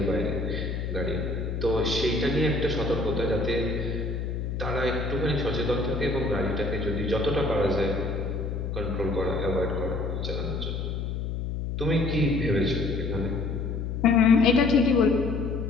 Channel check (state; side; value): noise; left; hum, 3 dB below the sound